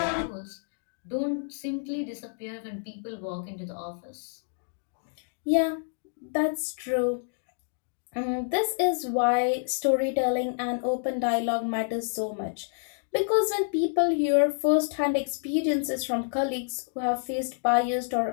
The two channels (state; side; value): silent; right; digital silence